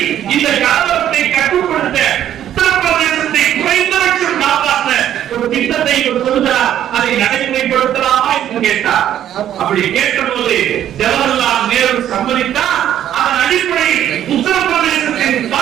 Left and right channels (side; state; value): left; quieter; 11.0 dB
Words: இந்த கலவரத்தை கட்டுப்படுத்த உத்தரப்பிரதேசத்தை குறைந்தபட்சம் காப்பாற்ற ஒரு திட்டத்தை சொல்கிறார். அதை நடைமுறைப்படுத்தலாமா என்று கேட்டார். அப்படி கேட்டபோது ஜவஹர்லால் நேரு சம்மதித்தார். அதன் அடிப்படையில் உத்தரப்பிரதேசத்தின்